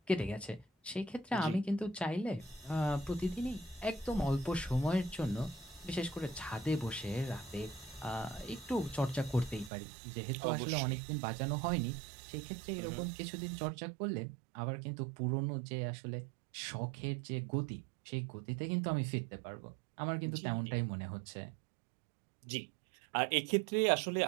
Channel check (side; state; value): left; drops out; at 9.7 s